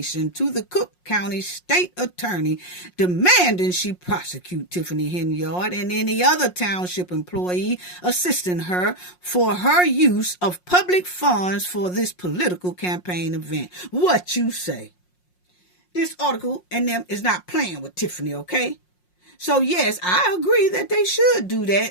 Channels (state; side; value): late; right; 5.6 ms